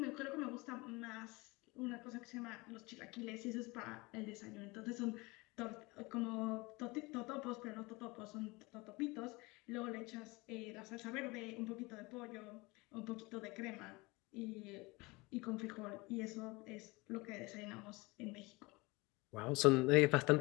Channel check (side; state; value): right; quieter; 24.3 dB